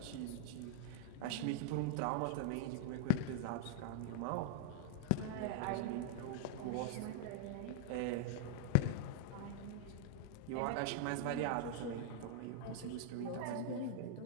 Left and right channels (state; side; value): different; both; correlation 0.00